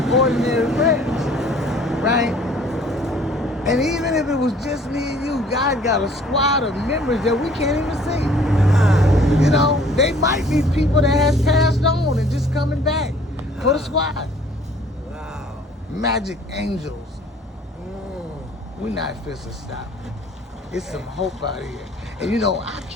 ordinary prayers, right? And even if it was just me and you, God got a squad of members that we can't even see. You know, they might be people that has passed on and just coming back for the squad. Wow. Magic angels. We're not supposed to stop. It's some hope out here. And you know, I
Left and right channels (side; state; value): both; normal; correlation 0.55